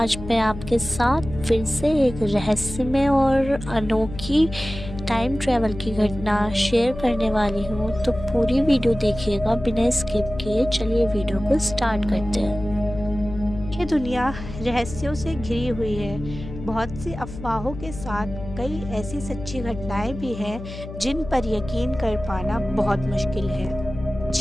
मैं आपके साथ फिर से एक रहस्यमय और अनोखी टाइम ट्रैवल की घटना शेयर करने वाली हूँ। तो पूरी वीडियो देखिएगा बिना स्किप किए। चलिए वीडियो को स्टार्ट करते हैं। ये दुनिया रहस्यों से घिरी हुई है। बहुत सी अफवाहों के साथ कई ऐसी सच्ची घटनाएं भी हैं जिन पर यकीन कर पाना बहुत मुश्किल है।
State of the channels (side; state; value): left; noise; hum, 11 dB below the sound